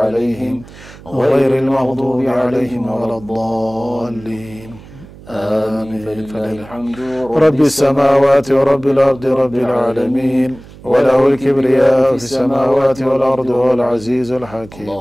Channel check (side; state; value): right; noise; hum, 20 dB below the sound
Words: غير المغضوب عليهم ولا الضالين آمين فلله الحمد رب السماوات ورب الأرض رب العالمين وله الكبرياء في السماوات والأرض والعزيز الحكيم